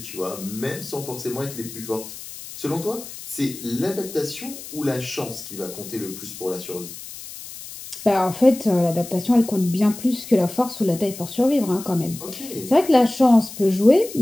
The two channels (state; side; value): noise; left; hiss, 13 dB below the sound